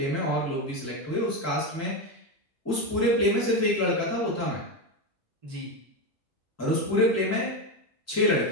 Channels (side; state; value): both; normal; correlation 0.13